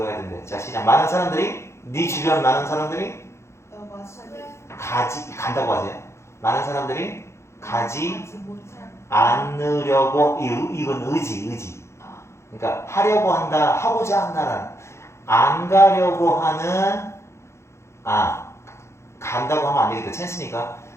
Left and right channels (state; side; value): late; right; 0.13 ms